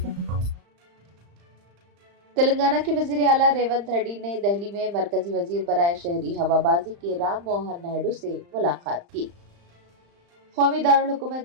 तेलंगाना के वजीर आला रेवंत रेड्डी ने दिल्ली में मरकजी वजीर बराए शहरी हवाबाजी के राम मोहन नायडू से मुलाकात की। कौमी दारुल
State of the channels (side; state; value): left; late; 35 ms